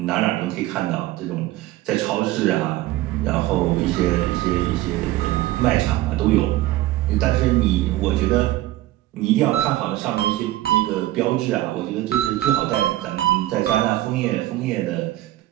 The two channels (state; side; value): quieter; left; 15.9 dB